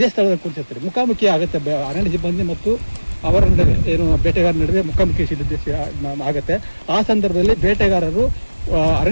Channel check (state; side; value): inverted; both; correlation -1.00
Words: ಸ್ಥಳದಲ್ಲಿ ಕೂತಿರ್ತಾರೆ. ಮುಖಾಮುಖಿ ಆಗುತ್ತೆ ಅರಣ್ಯ ಸಿಬ್ಬಂದಿ ಮತ್ತು ಅವರ ನಡುವೆ ಏನು ಬೇಟೆಗಾರರ ನಡುವೆ ಮುಖಾಮುಖಿ ಆಗುತ್ತೆ. ಆ ಸಂದರ್ಭದಲ್ಲಿ ಬೇಟೆಗಾರರು